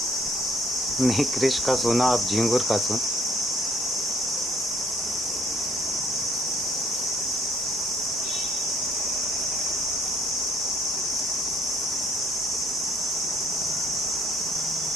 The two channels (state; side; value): normal; both; correlation 0.63